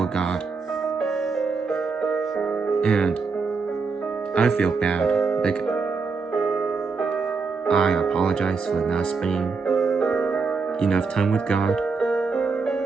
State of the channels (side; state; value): left; quieter; 4.7 dB